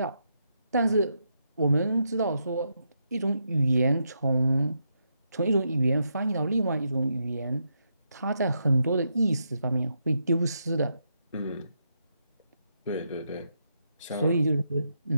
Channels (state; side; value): inverted; both; correlation -0.81